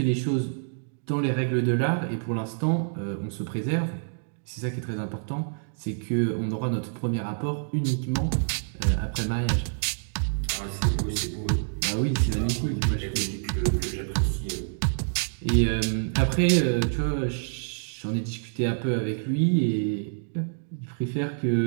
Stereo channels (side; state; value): left; silent; digital silence